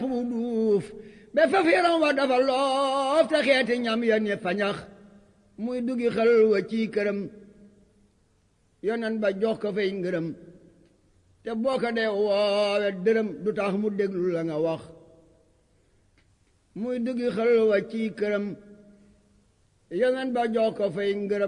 bu duuf ba faf yaram wa dafa loof te xeeti ñam ya ne fañax muy duggi xel wa ci këram yonen ba jox ko fay ngërëm te boo ko dee woowe dërëm du tax mu déglu la nga wax muy duggi xel wa ci këram yonen ba jox ko fay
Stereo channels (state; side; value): identical; both; correlation 1.00